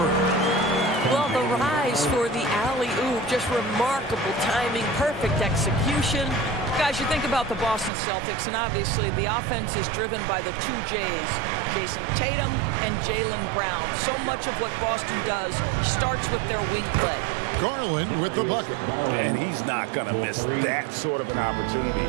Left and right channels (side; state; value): left; drops out; at 7.9 s